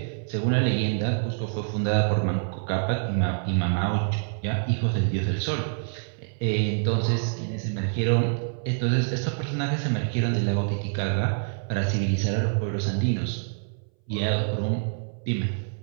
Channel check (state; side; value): silent; left; 61 dB below the other